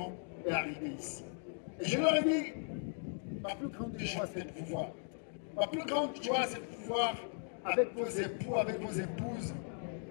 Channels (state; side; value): silent; right; 53 dB below the other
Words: et arriver ici. Et je leur ai dit, ma plus grande joie, c'est de vous voir. Ma plus grande joie, c'est de vous voir avec vos époux, avec vos épouses,